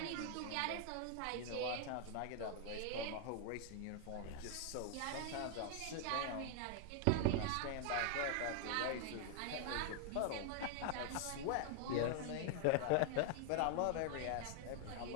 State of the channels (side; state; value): both; different; correlation 0.00